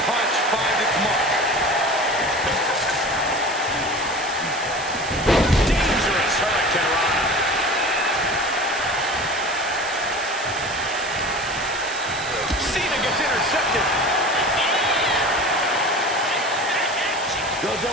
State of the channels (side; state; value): right; noise; hiss, 12 dB below the sound